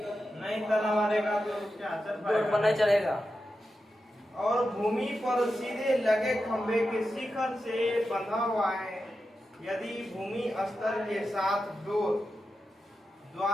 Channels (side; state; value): both; normal; correlation 0.90